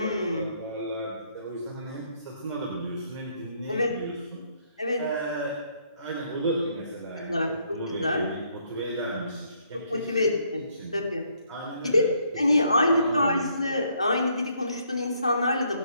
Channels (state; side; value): inverted; both; correlation -0.70